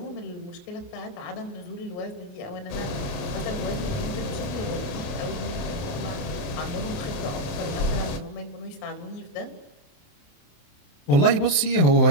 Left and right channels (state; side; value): late; right; 28 ms